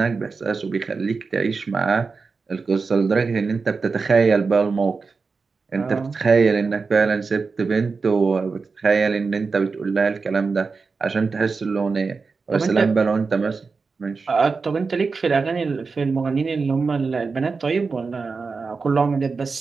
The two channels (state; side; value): quieter; left; 4.6 dB